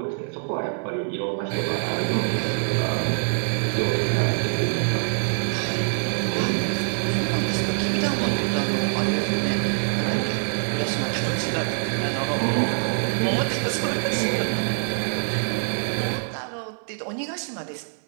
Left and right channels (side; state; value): left; silent; 59 dB below the other